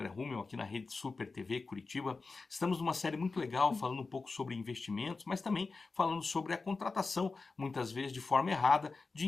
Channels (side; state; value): right; quieter; 4.0 dB